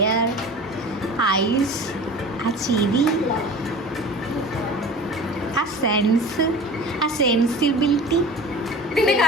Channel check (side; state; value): both; normal; correlation 0.38